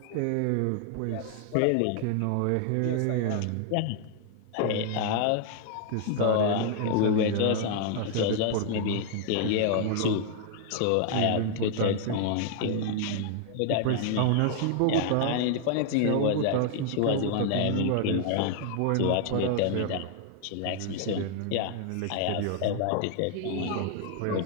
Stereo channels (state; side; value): different; both; correlation 0.00